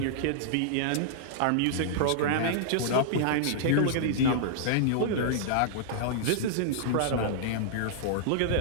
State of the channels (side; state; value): both; different; correlation -0.01